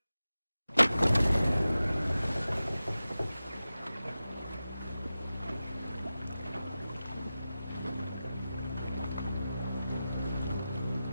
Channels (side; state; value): both; inverted; correlation -0.94